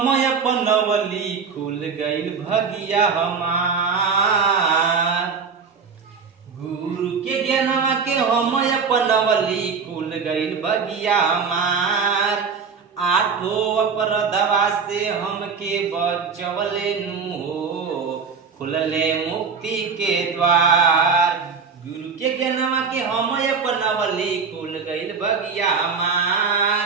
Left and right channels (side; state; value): left; quieter; 5.6 dB